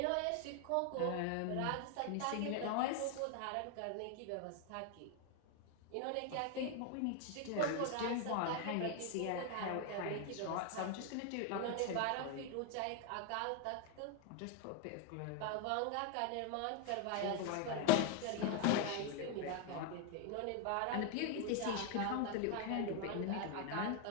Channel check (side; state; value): both; different; correlation 0.01